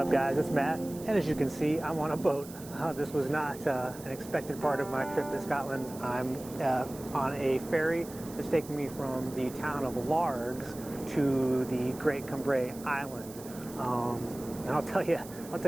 up, guys? It's Matt, and as you can see, I'm on a boat. This was not an expected part of my trip to Scotland. I'm on a ferry that's taking me from the town of Largs to the Great Cumbrae Island. And I'll tell you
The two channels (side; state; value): right; noise; hiss, 17 dB below the sound